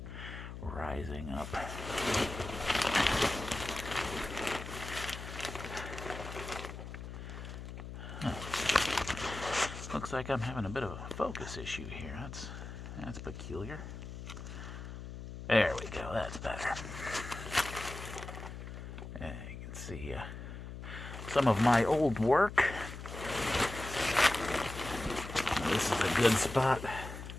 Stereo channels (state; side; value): noise; left; hum, 9 dB below the sound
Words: rising up. Looks like I'm having a bit of a focus issue here. That's peculiar. There we go, that's better. And you can see some of my old work. This is a good spot